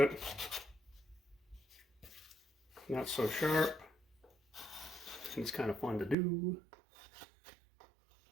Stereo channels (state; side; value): drops out; left; at 6.2 s